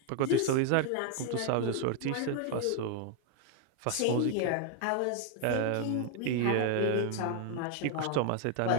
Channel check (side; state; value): both; different; correlation 0.00